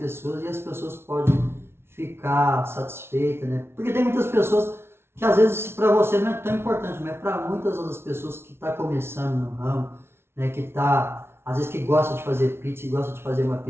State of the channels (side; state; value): left; late; 0.12 ms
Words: e as pessoas podem ficar satisfeitas, né? Porque tem muitas pessoas que às vezes para você não é tão importante, mas para muitas outras pessoas que estão começando no ramo, né, que tá, às vezes que gosta de fazer pizza e gosta de fazer uma